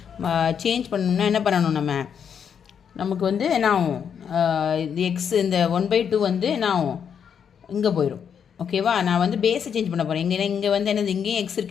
சேஞ்ச் பண்ணனும்னா என்ன பண்ணனும் நமக்கு வந்து என்ன ஆகும்? இந்த x இந்த 1/2 வந்து என்ன ஆகும்? இங்க போயிடும். ஓகேவா? நான் வந்து பேஸை சேஞ்ச் பண்ண போகிறேன். இங்கே வந்து என்னது இங்கேயும் எக்ஸ்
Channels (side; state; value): right; quieter; 7.6 dB